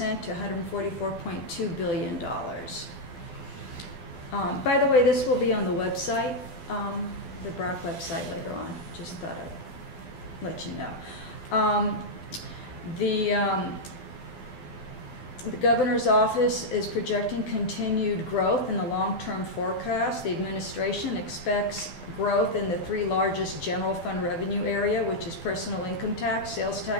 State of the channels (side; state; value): right; late; 12 ms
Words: to $144.2 billion. By the way, this will be on the website, the Brac website later on. Just thought I'd let you know. The governor's office is projecting continued growth in the long-term forecast. The administration expects growth in the three largest general fund revenue area, which is personal income tax, sales